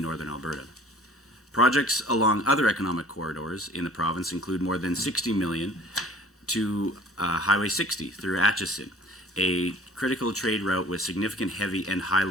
northern Alberta. Projects along other economic corridors in the province include more than $60 million to Highway 60 through Atchison, a critical trade route with significant heavy and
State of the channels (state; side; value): normal; both; correlation 0.50